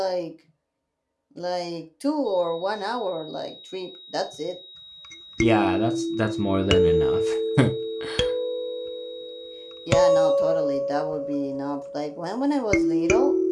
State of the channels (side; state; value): both; identical; correlation 1.00